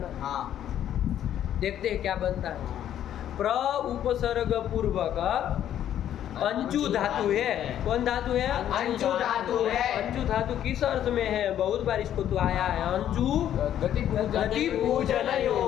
देखते हैं क्या बनता है। प्र उपसर्ग पूर्वक अंचु धातु है। कौन धातु है? अंचु धातु है। अंचु धातु किस अर्थ में है? बहुत बार इसको तो आया है। अंचु गति पूजन,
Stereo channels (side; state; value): right; quieter; 10.8 dB